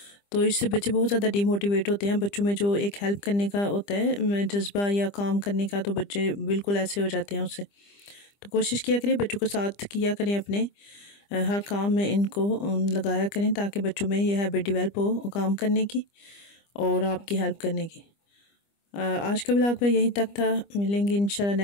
तो इससे बच्चे बहुत ज़्यादा डिमोटिवेट होते हैं। बच्चों में जो एक हेल्प करने का होता है जज्बा या काम करने का, तो बच्चे बिल्कुल ऐसे हो जाते हैं उससे। तो कोशिश किया करें बच्चों को साथ किया करें अपने, हर काम में इनको लगाया करें ताकि बच्चों में यह हैबिट डेवलप हो काम करने की और आपकी हेल्प करने की। आज का व्लॉग में यहीं तक था, मिलेंगे इंशाल्लाह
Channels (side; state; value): right; late; 25 ms